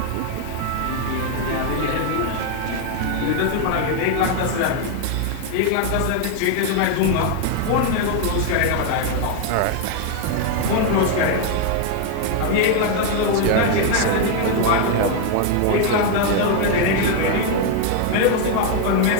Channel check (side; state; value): both; different; correlation 0.01